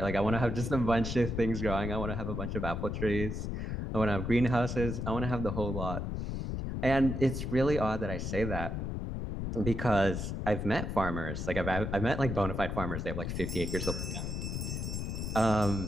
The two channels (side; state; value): left; noise; rumble, 3 dB below the sound